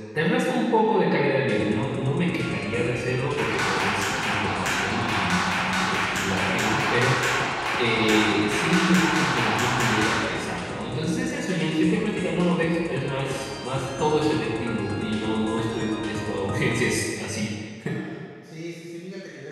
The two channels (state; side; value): identical; both; correlation 1.00